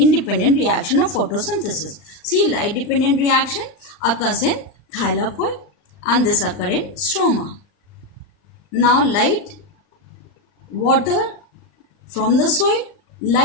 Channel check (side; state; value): right; late; 39 ms